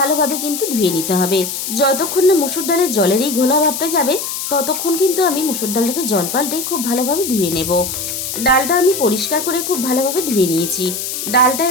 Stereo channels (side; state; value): left; noise; hiss, 5 dB below the sound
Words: কিন্তু ধুয়ে নিতে হবে। যতক্ষণ না মুসুর ডালের জলের এই ঘোলা ভাবটা যাবে ততক্ষণ কিন্তু আমি মুসুর ডালটাকে জল পাল্টে খুব ভালোভাবে ধুয়ে নেব। ডালটা আমি পরিষ্কার করে খুব ভালোভাবে ধুয়ে নিয়েছি। ডালটা